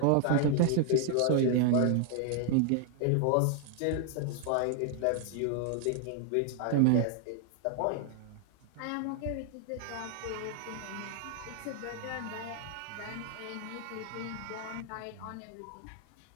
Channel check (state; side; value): different; both; correlation 0.00